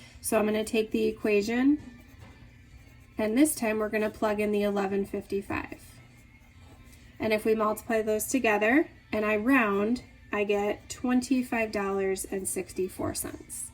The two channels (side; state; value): both; identical; correlation 1.00